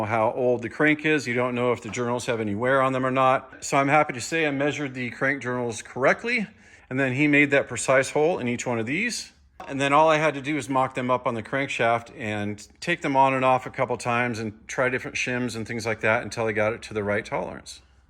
how old the crank is. You don't know if the journals have any wear on them or not. So I'm happy to say I measured the crank journals correctly, and then he made that precise hole in each one of these. And then all I had to do is mock them up on the crankshaft and take them on and off a couple times and try different shims and things like that until I got it to the right tolerance.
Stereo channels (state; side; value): identical; both; correlation 1.00